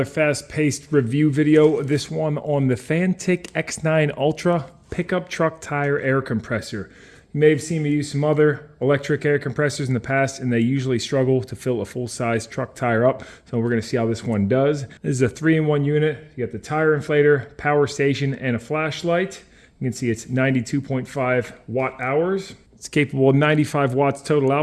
fast-paced review video. This one on the Fantik X9 Ultra pickup truck tire air compressor. You may have seen me use some other electric air compressors in the past, and they usually struggle to fill a full-size truck tire up. So we're going to see how this one does. This is a 3-in-1 unit. You got the tire inflator, power station, and a flashlight. You can see it's 92.5 watt hours. It's capable of 95 watts total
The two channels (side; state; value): both; identical; correlation 1.00